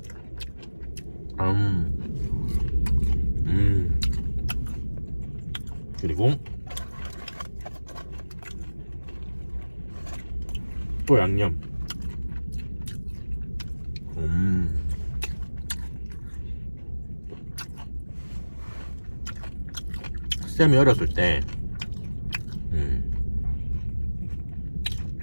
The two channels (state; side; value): inverted; both; correlation -1.00